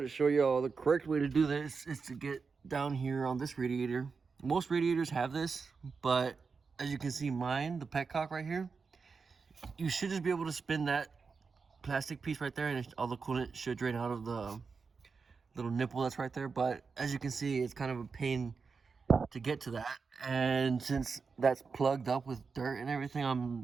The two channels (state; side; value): quieter; left; 5.0 dB